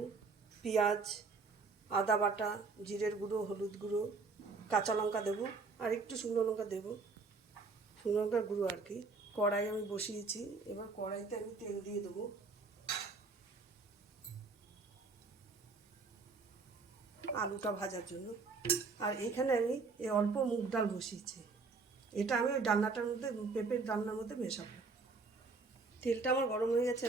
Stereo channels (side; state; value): left; quieter; 4.2 dB